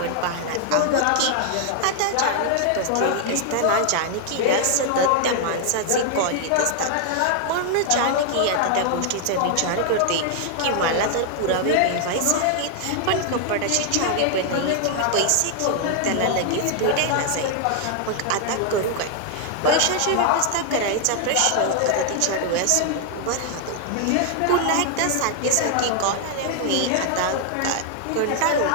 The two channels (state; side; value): different; both; correlation 0.00